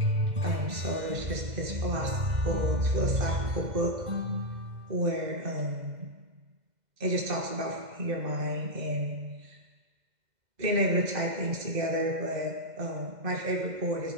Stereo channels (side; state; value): left; late; 2.0 ms